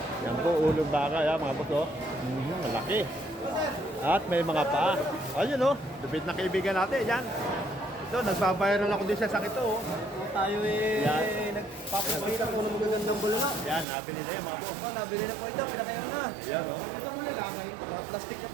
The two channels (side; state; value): left; drops out; at 13.9 s